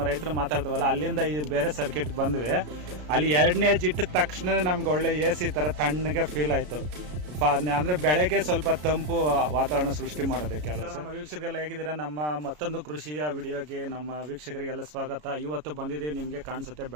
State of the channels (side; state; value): left; late; 33 ms